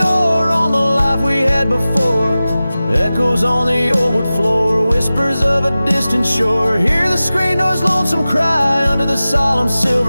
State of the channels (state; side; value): inverted; both; correlation -0.96